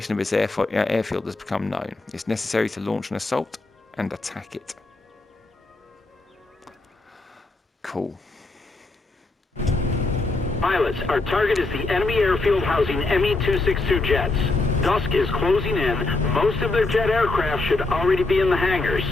of its airfield has become known. It's necessary to launch an assault and attack it. Cool. Pilots, our target is the enemy airfield housing ME-262 jets. Dusk is closing in. Most of their jet aircraft should already be in the hangars.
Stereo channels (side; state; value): right; quieter; 3.2 dB